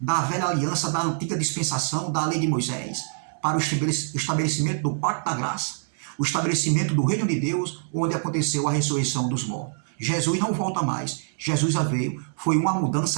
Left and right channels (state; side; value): silent; left; digital silence